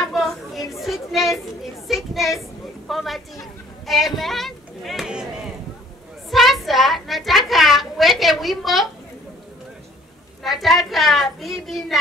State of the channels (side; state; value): both; normal; correlation 0.57